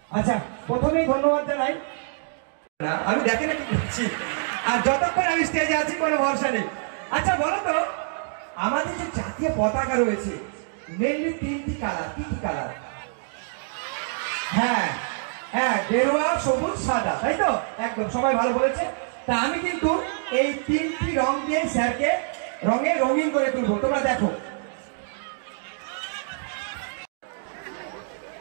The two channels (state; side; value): silent; left; digital silence